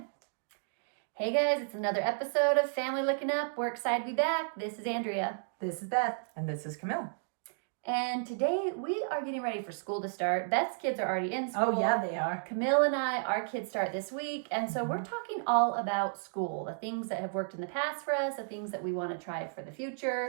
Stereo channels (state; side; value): silent; left; digital silence